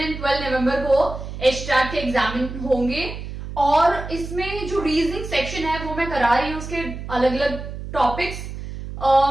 और 12 नवंबर को एचटेट के एग्जाम होंगे। और इसमें जो रीजनिंग सेक्शन है वो मैं करा रही हूँ, उसके अलग अलग टॉपिक्स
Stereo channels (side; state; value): right; noise; hum, 9 dB below the sound